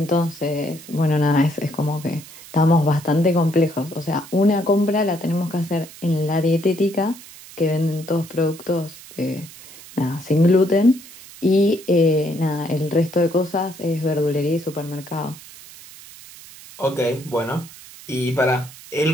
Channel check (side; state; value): right; noise; hiss, 18 dB below the sound